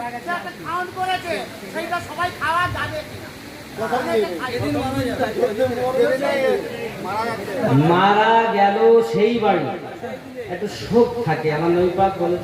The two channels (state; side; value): identical; both; correlation 1.00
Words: মারা গেল সেই বাড়ি একটু শোক থাকে, আমার নবী পাক